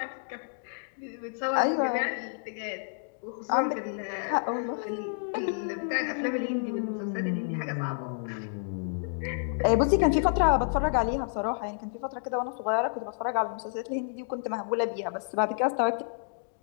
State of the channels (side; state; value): right; silent; digital silence